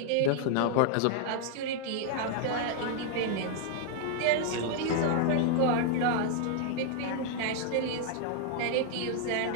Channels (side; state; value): both; different; correlation 0.00